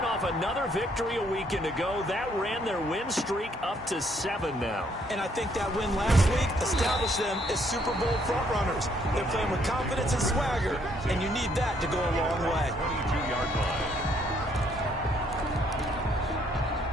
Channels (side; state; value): both; normal; correlation 0.68